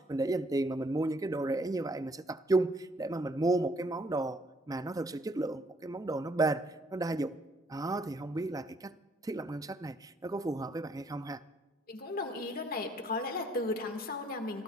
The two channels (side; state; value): both; normal; correlation 0.66